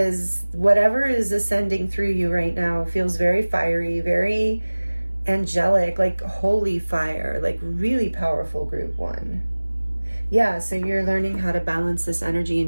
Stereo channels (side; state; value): both; inverted; correlation -1.00